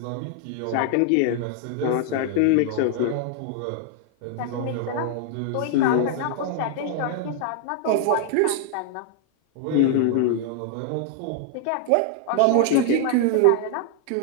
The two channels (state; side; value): different; both; correlation 0.00